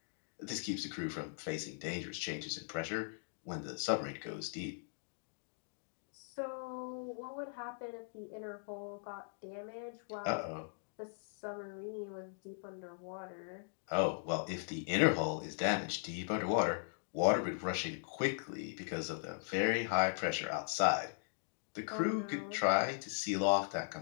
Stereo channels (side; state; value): right; silent; digital silence